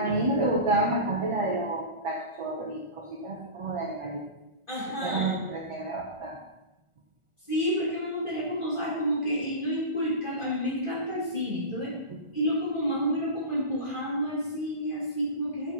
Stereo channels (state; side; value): late; left; 1.4 ms